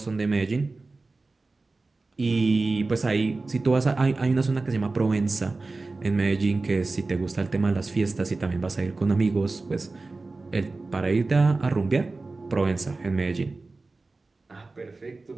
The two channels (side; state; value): left; quieter; 3.5 dB